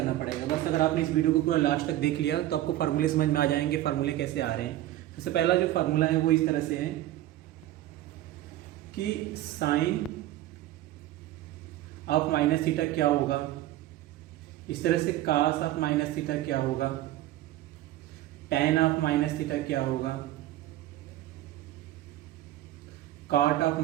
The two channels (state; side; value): quieter; left; 14.6 dB